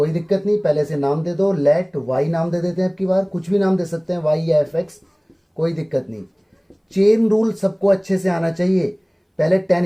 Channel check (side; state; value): both; identical; correlation 1.00